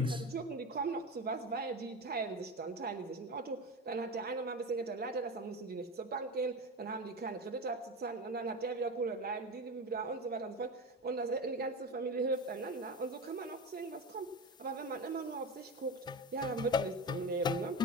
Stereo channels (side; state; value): both; normal; correlation 0.24